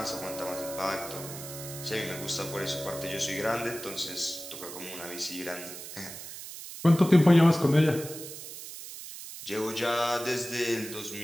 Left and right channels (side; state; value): right; noise; hiss, 11 dB below the sound